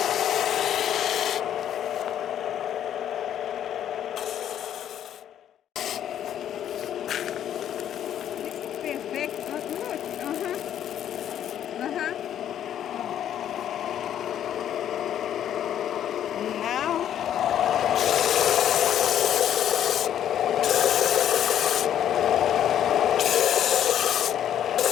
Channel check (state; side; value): quieter; right; 10.3 dB